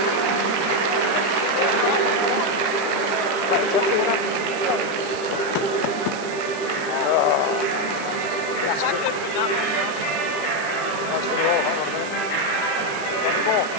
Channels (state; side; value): noise; right; hiss, 15 dB below the sound